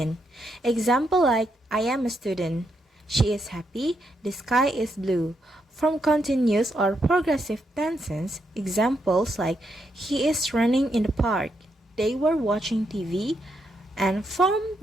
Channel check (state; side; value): normal; both; correlation 0.80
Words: Example like I am a student. She is happy. The sky is blue. From continuous or progressive tenses, examples like he is running in the park. They were watching TV. And from